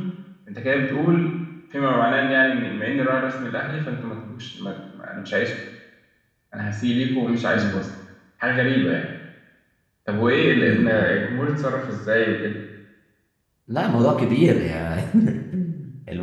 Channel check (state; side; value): identical; both; correlation 1.00